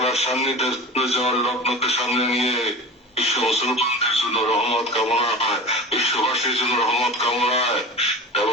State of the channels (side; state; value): both; normal; correlation 0.33